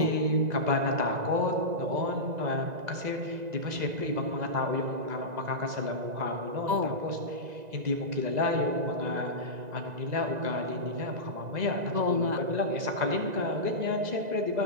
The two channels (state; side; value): late; left; 2.0 ms